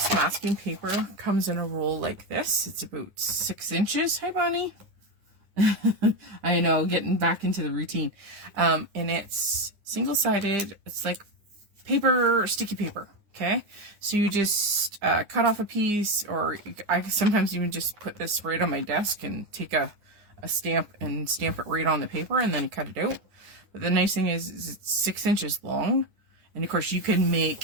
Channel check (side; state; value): left; late; 9.6 ms